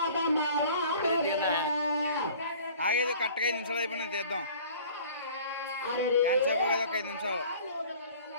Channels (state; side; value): inverted; both; correlation -0.48